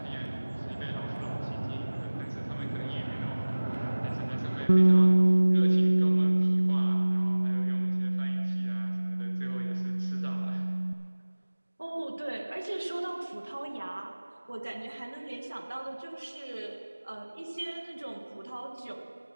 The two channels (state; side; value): inverted; both; correlation -1.00